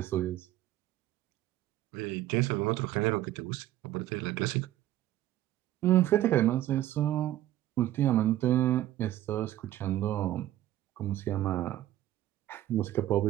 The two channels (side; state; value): left; quieter; 13.8 dB